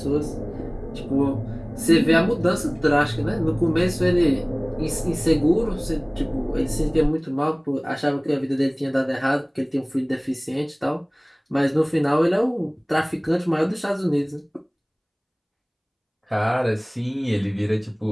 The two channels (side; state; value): both; identical; correlation 1.00